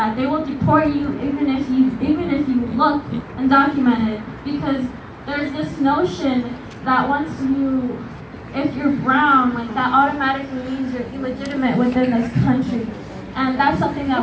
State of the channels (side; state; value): both; identical; correlation 1.00